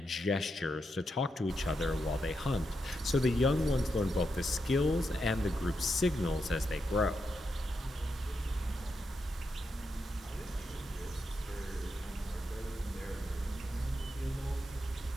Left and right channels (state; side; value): normal; both; correlation 0.84